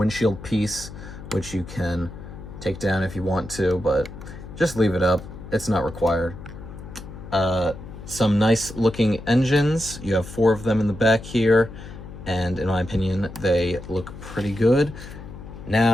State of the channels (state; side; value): noise; left; hum, 13 dB below the sound